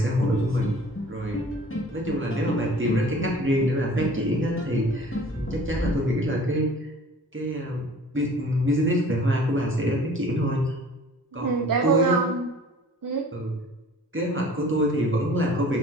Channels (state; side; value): normal; both; correlation 0.48